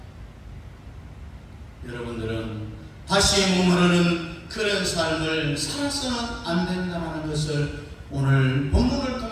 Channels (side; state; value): both; identical; correlation 1.00